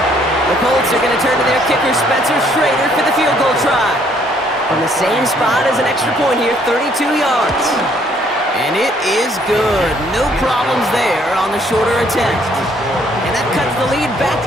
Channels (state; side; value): normal; both; correlation 0.65